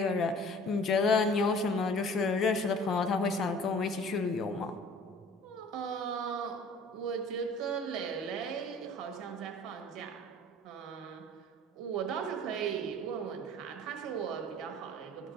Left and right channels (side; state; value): both; normal; correlation 0.48